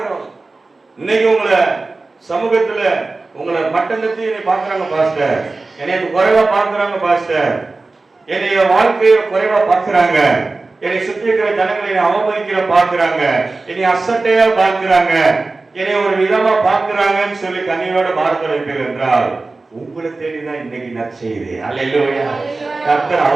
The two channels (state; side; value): quieter; left; 3.5 dB